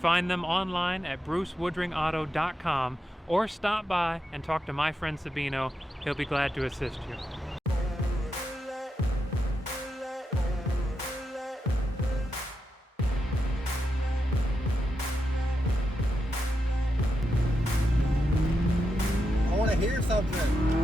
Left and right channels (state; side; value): normal; both; correlation 0.86